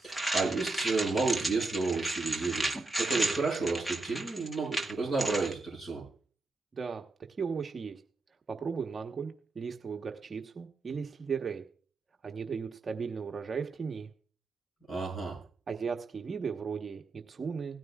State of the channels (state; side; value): quieter; left; 3.4 dB